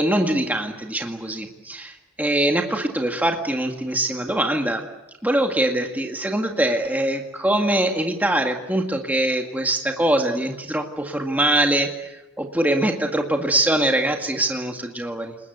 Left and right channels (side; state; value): both; normal; correlation 0.59